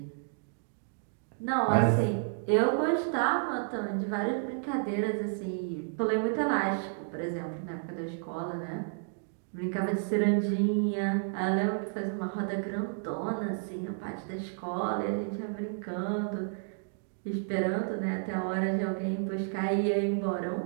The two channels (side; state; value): left; silent; digital silence